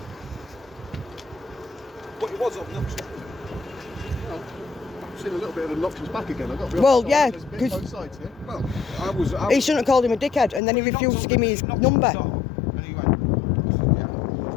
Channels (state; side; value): drops out; right; at 10.6 s